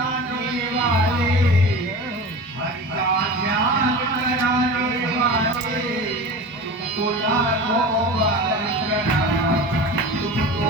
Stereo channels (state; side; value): normal; both; correlation 0.33